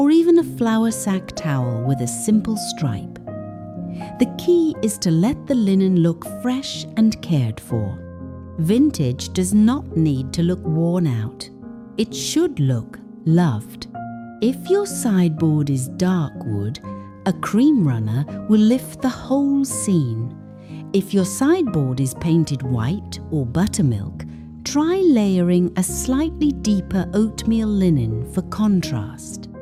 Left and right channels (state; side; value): identical; both; correlation 1.00